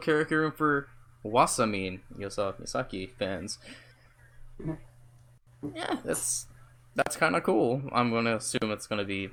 room for Wasamin Yosa Misaki fans. Yeah, that's kind of cool. I'm gonna assume it's gonna be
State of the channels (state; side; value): identical; both; correlation 1.00